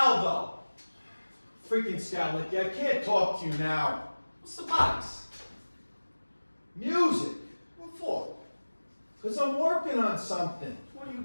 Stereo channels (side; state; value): both; inverted; correlation -1.00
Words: Freaking Scowlicky, I can't talk to you now. What's the box? Music. What for? Because I'm working on something. What are you